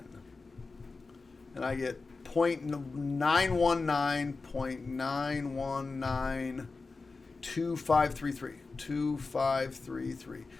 And I get 0.919.9192533. 2533.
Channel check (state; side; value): quieter; right; 4.0 dB